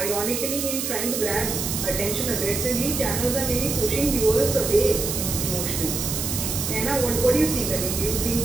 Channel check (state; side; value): noise; right; hiss, 2 dB below the sound